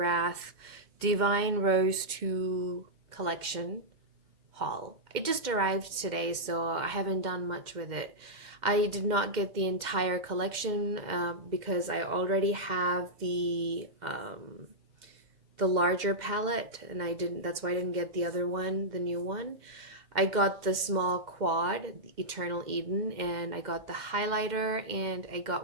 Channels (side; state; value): left; late; 2.1 ms